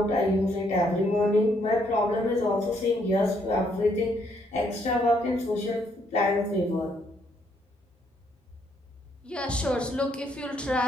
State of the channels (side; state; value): both; normal; correlation 0.71